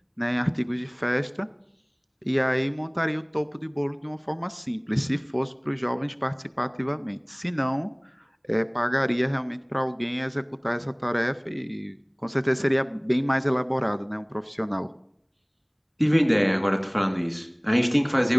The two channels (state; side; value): identical; both; correlation 1.00